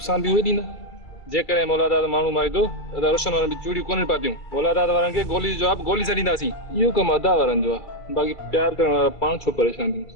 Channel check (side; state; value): right; late; 2.3 ms